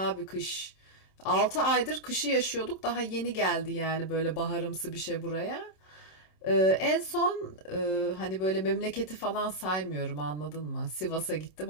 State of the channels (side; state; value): right; late; 27 ms